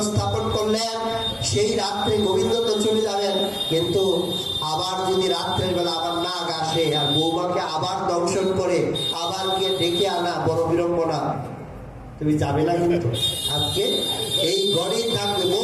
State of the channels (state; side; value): identical; both; correlation 1.00